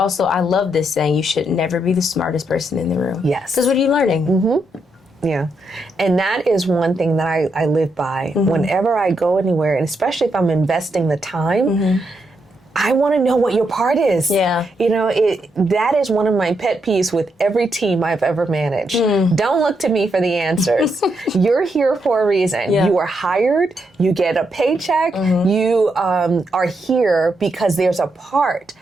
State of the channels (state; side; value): normal; both; correlation 0.80